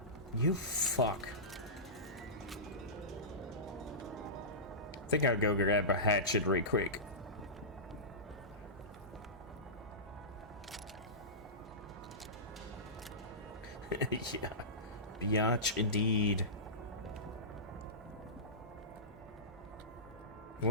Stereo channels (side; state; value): both; normal; correlation -0.18